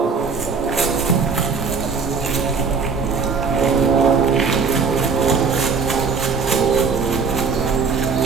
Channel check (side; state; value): left; quieter; 5.1 dB